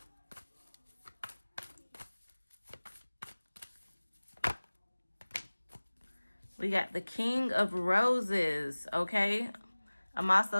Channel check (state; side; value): inverted; both; correlation -1.00